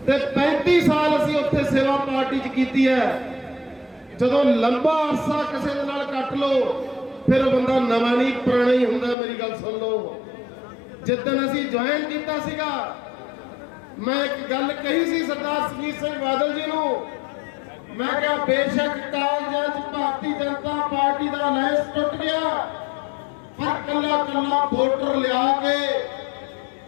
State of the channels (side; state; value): right; drops out; at 9.2 s